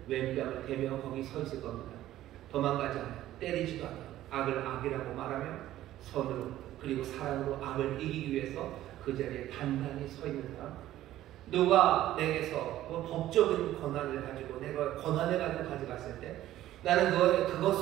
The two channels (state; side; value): quieter; left; 13.8 dB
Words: 왼뺨을 대며 거기 서 있을 겁니다. 도망가지 않아요. 때리지도 않아요. 악을 악이라고 말하며 선으로 그리고 사랑으로 악을 이기기 위해서 그 자리에 단단히 서 있는 사람. 누가 내게서 법적인 권한을 가지고 내가 권한을 가지고 가져갔을 때 나는